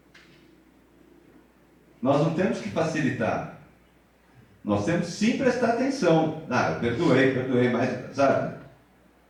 Nós não temos que facilitar. Nós temos sim prestar atenção. Eu perdoei, mas, sabe?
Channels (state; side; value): identical; both; correlation 1.00